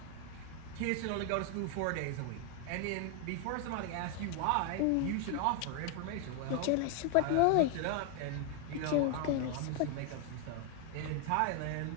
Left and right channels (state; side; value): different; both; correlation 0.00